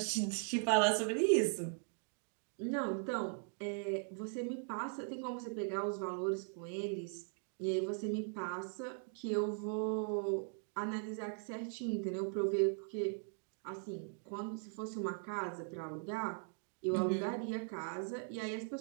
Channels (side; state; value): left; silent; 51 dB below the other